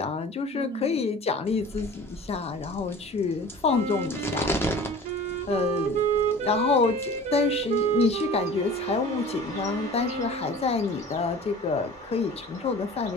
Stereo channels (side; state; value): both; normal; correlation 0.42